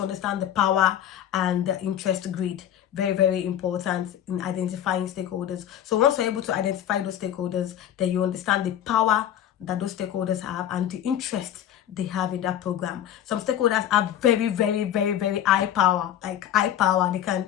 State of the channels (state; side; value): quieter; right; 10.8 dB